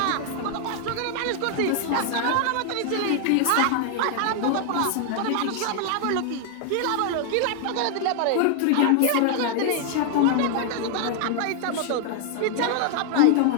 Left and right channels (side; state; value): both; different; correlation 0.00